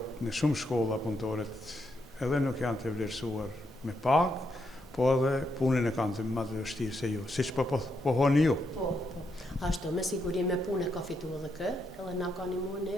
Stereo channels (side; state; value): both; normal; correlation 0.80